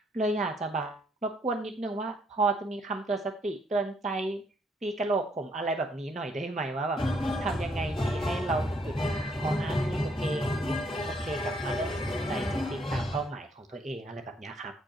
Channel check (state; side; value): normal; both; correlation 0.69